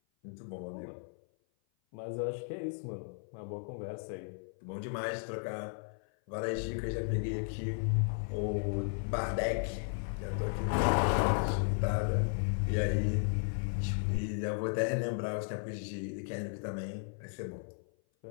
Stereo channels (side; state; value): right; silent; 54 dB below the other